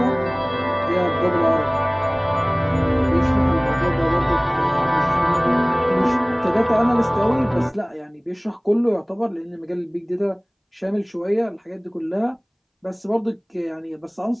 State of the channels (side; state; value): both; identical; correlation 1.00